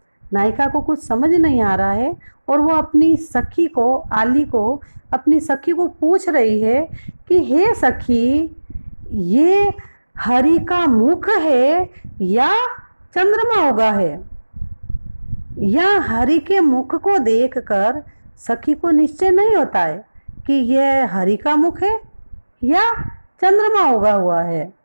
नायिका को कुछ समझ नहीं आ रहा है और वो अपनी सखी को, आली को, अपनी सखी को पूछ रही है कि हे सखी, ये हरि का मुख है या चंद्रमा उगा है? या हरि के मुख को देखकर सखी को निश्चय नहीं होता है कि यह हरि का मुख है या चंद्रमा उगा हुआ है।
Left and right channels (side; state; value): both; inverted; correlation -1.00